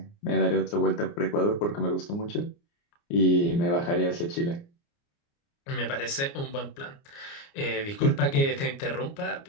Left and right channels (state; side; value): late; right; 29 ms